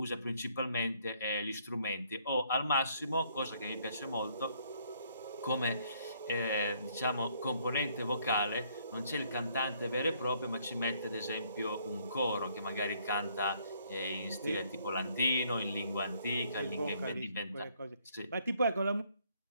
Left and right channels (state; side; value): inverted; both; correlation -0.67